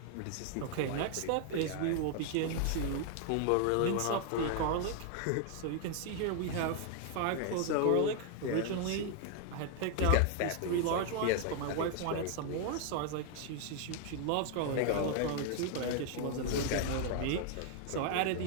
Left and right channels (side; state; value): both; different; correlation 0.00